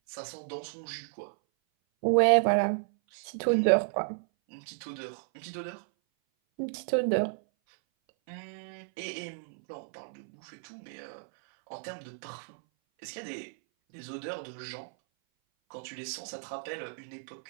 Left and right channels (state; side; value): silent; left; 56 dB below the other